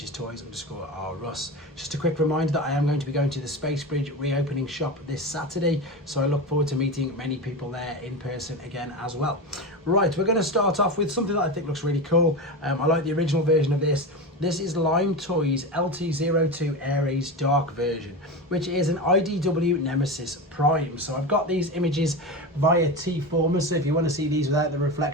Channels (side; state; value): both; normal; correlation 0.22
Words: is Toys_R_Us. Just a quick reminder that I am going to be going to the Space Bridge reopening shop this Saturday, so I look forward to meeting many people there in person again as well. Right, we're going to start off with something that I think looks really cool. I like the original version of this. This is Lime Toys LT02 Ares Dark version, which is an IDW Nemesis Prime. So I've got these images via tfcon, so if you want to see these without the